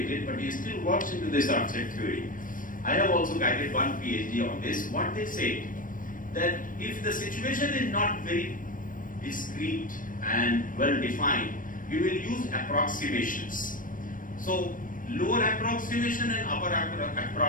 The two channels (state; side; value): late; right; 0.39 ms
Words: but he still works into this rough set theory. I have also guided one PhD on this. What they say, that if the situation is not very discrete and well defined, we will use approximations. So lower approximation and upper